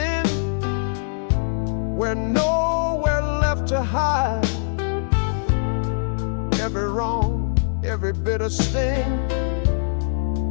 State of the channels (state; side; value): silent; right; digital silence